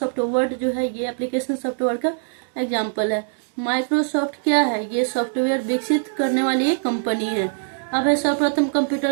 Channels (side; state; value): left; silent; digital silence